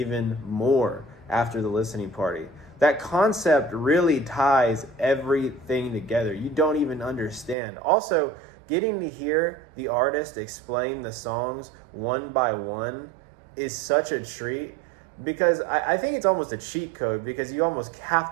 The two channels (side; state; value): left; drops out; at 7.6 s